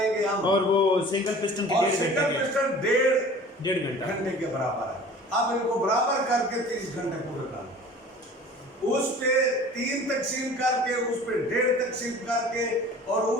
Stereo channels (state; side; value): normal; both; correlation 0.44